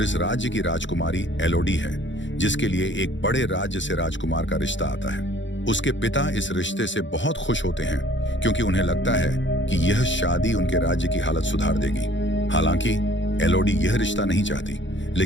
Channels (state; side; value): late; right; 0.54 ms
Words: इस राज्य की राजकुमारी एलोडी है, जिसके लिए एक बड़े राज्य से राजकुमार का रिश्ता आता है। उसके पिता इस रिश्ते से बहुत खुश होते हैं क्योंकि उन्हें लगता है कि यह शादी उनके राज्य की हालत सुधार देगी। हालांकि एलोडी यह रिश्ता नहीं चाहती,